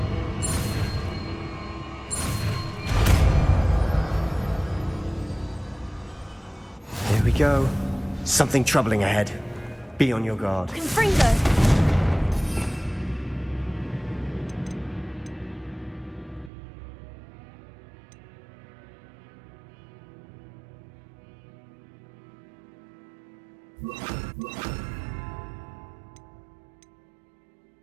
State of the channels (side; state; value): left; drops out; at 16.5 s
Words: Here we go. Something troubling ahead. Be on your guard. Confringo.